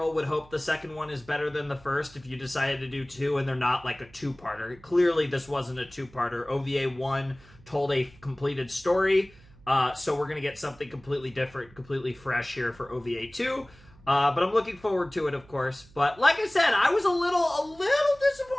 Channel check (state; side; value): noise; right; hum, 25 dB below the sound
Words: would hope the second one is better than the first if you decided to do 2 and they're not like a 2-parter. Clearly this wasn't a 2-parter. OVA 1 told a completed story, so we're going to get something completely different, completely fresh here for OVA 2. But I'm looking forward to it, of course. But like I said, I was a little